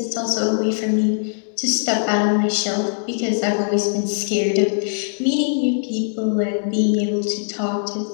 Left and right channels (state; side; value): silent; right; digital silence